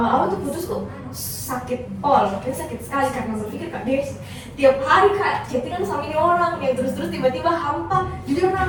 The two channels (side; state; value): both; identical; correlation 1.00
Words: tuh putus tuh sakit pol, sakit sekali karena berpikir kak dia tiap hari kak chattingan sama ini orang yang terus-terus tiba-tiba hampa. Jujur kak,